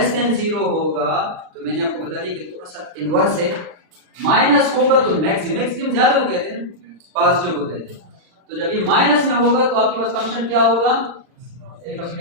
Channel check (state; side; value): late; left; 39 ms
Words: देन 0 होगा तो मैंने आपको बता दिया कि थोड़ा सा इनवर्स है। माइनस होगा तो मैक्सिमम ज्यादा को कहते हैं, पॉजिटिव को कहते हैं। तो जब ये माइनस में होगा तो आपके पास फंक्शन क्या होगा, x